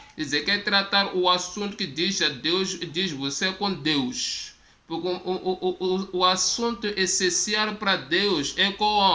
Dizer que é tratar o assunto que diz a Deus, diz você com Deus. Porque o assunto essencial para Deus é com o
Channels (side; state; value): both; identical; correlation 1.00